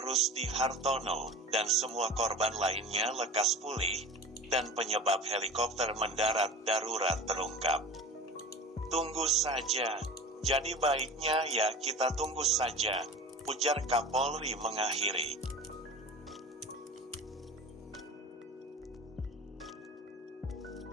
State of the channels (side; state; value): both; normal; correlation 0.36